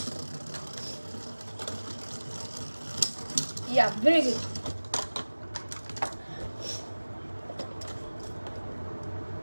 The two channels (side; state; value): both; inverted; correlation -1.00